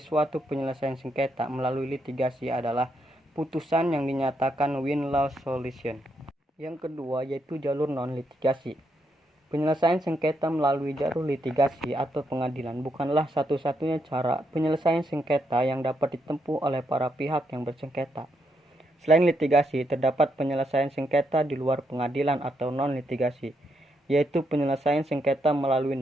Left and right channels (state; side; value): normal; both; correlation 0.79